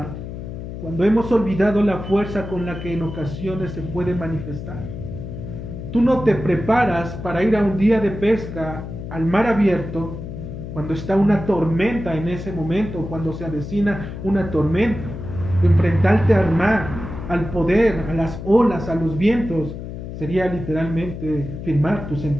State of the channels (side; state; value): left; noise; hum, 9 dB below the sound